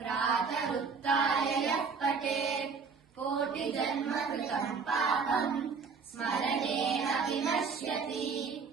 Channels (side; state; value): left; quieter; 5.3 dB